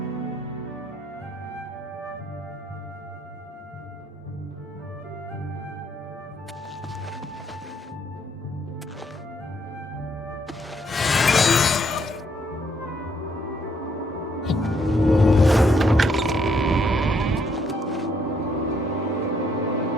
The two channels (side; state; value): both; normal; correlation 0.71